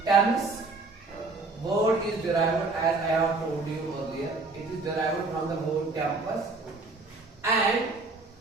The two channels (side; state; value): left; quieter; 3.6 dB